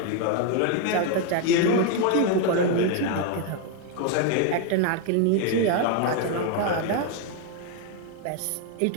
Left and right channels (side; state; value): both; different; correlation 0.01